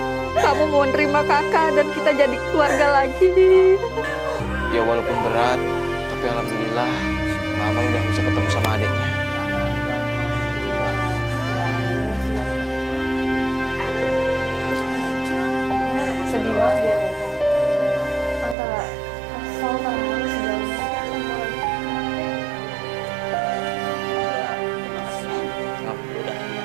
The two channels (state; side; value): drops out; left; at 18.6 s